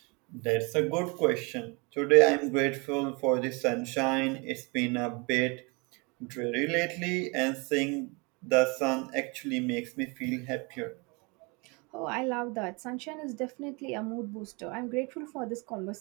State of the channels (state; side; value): quieter; left; 29.4 dB